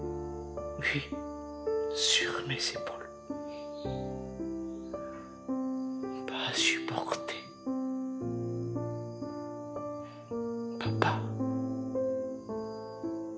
Oui, sur mes épaules. Pas à supporter. Papa.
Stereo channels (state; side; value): identical; both; correlation 1.00